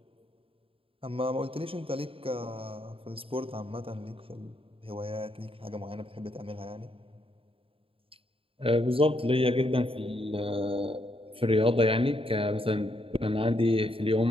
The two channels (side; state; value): left; late; 0.27 ms